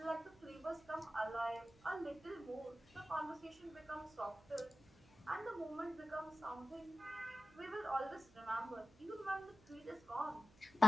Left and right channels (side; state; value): right; noise; hum, 25 dB below the sound